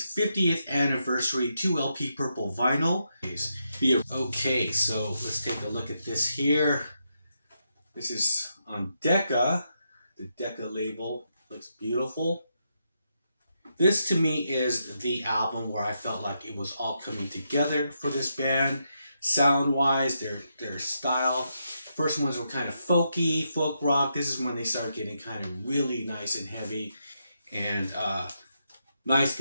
50th anniversary 2 LP Purple Vinyl. Okay, so let's take a look at this here. This is on Decca. The Decca label looks beautiful. This to me is the album where I felt like it was all coming together for this band. Sound-wise, their style. First ones were kind of folky, folk rock. This is when they started getting kind of really nice and heavy and nice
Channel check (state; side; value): inverted; both; correlation -0.82